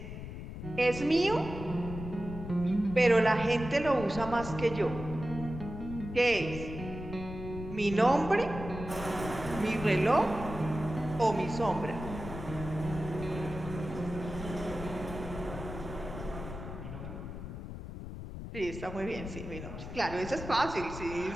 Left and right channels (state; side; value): noise; left; rumble, 9 dB below the sound